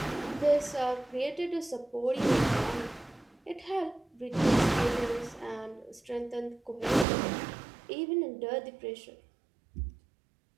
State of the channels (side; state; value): left; drops out; at 7.1 s